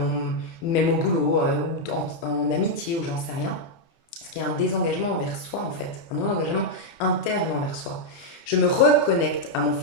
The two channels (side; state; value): right; late; 30 ms